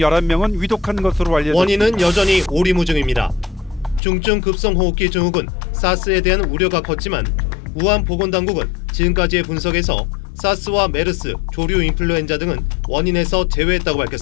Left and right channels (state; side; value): drops out; right; at 4.0 s